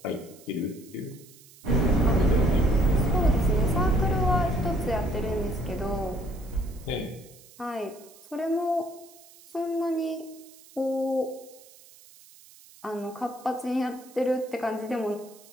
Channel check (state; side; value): noise; right; hiss, 23 dB below the sound